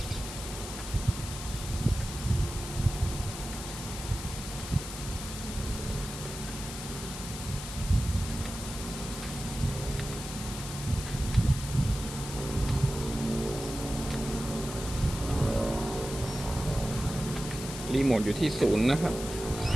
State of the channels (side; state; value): left; noise; hiss, 9 dB below the sound